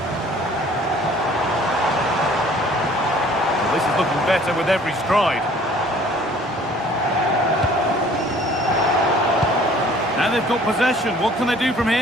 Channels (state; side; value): normal; both; correlation 0.54